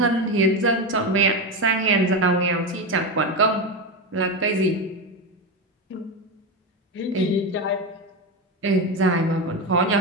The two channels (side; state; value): both; normal; correlation 0.15